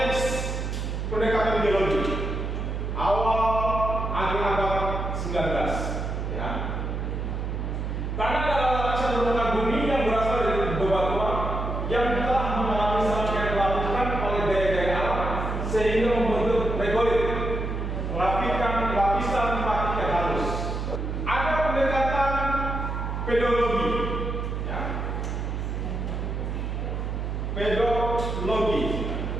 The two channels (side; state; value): right; noise; hum, 3 dB below the sound